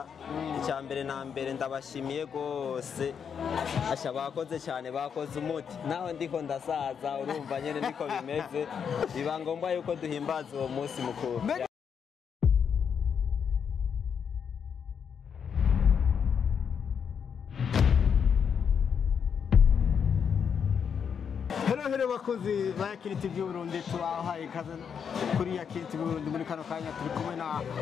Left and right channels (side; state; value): right; quieter; 7.1 dB